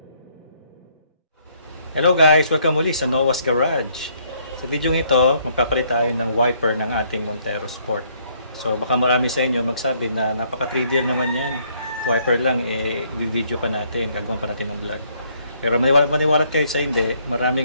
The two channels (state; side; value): inverted; both; correlation -0.68